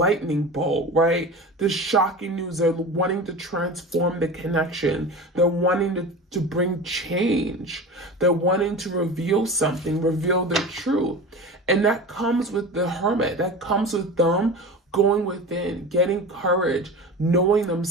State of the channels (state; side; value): normal; both; correlation 0.31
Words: bolt, right? This shocking news. They're wanting to transform the connection. They're wanting to bring change. They're wanting to reveal something, reveal their truth. And that comes with the Hermit. That comes with them going within, getting courage, knowing